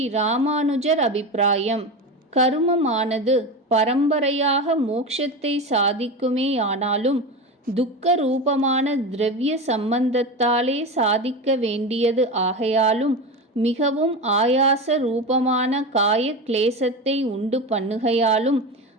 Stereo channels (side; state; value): both; normal; correlation 0.23